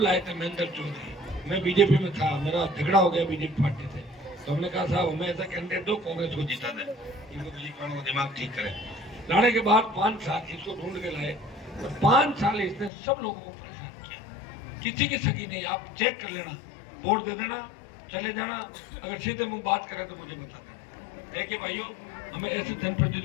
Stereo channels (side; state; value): right; drops out; at 12.9 s